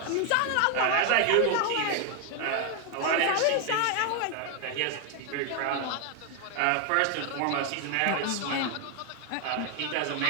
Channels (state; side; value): different; both; correlation 0.01